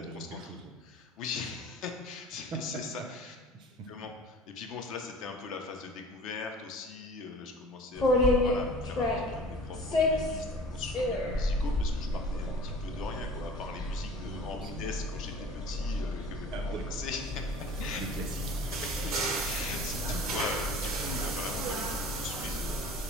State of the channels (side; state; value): both; normal; correlation 0.44